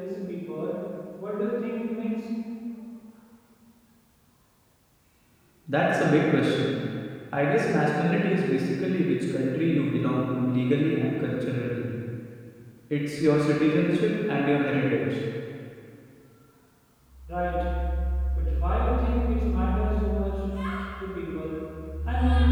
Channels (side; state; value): both; identical; correlation 1.00